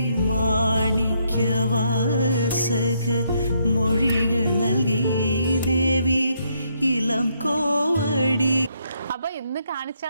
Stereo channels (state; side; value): inverted; both; correlation -0.74